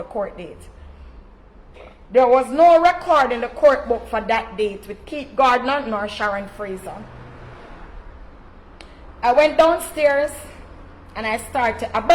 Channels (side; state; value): both; identical; correlation 1.00